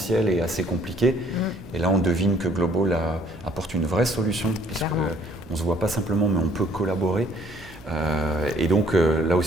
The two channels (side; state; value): right; noise; hum, 22 dB below the sound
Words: est assez compliqué. Et là, on devine que Global apporte une vraie solution, puisqu'on ne se voit pas simplement, mais on peut collaborer. Et donc, là